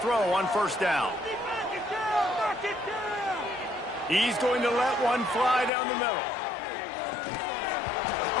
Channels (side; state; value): right; drops out; at 5.7 s